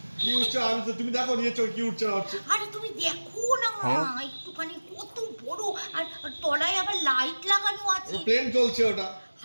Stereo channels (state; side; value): inverted; both; correlation -1.00